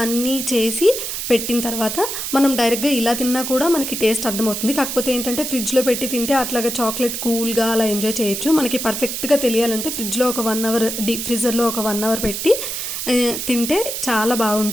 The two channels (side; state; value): right; noise; hiss, 4 dB below the sound